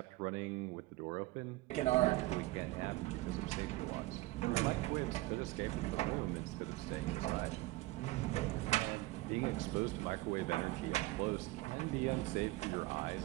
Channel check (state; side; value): quieter; left; 19.7 dB